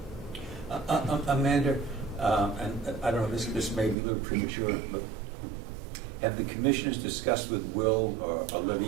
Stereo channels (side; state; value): left; drops out; at 4.0 s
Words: Amanda, and I don't know, this may be a little premature, but have the commissioners discussed with Will or